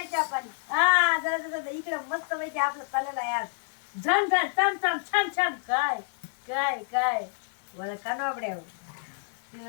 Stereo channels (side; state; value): right; silent; digital silence